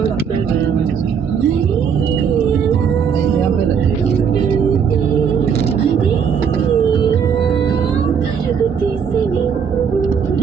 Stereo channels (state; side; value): quieter; left; 7.0 dB